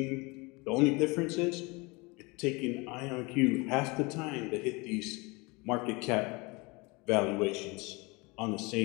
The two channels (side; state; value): right; quieter; 26.4 dB